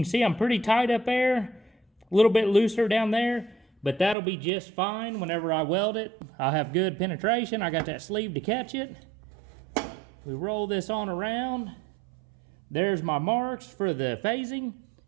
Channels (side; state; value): left; drops out; at 4.2 s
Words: see I'm pretty tight up there, a little bit looser down there, but that'll be just fine whenever I weld it. I'll have good penetration. I got that sleeve to catch it. We roll this on around. There's my marks for the phasing.